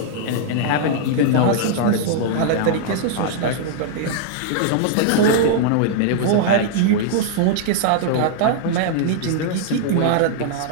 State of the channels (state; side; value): different; both; correlation -0.01